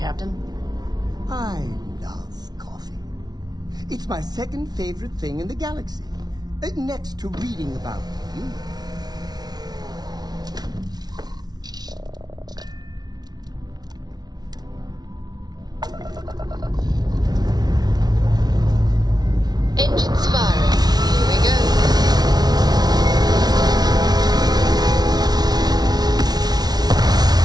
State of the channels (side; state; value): left; late; 0.19 ms